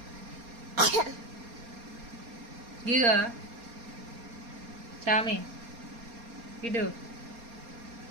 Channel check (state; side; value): late; left; 4.3 ms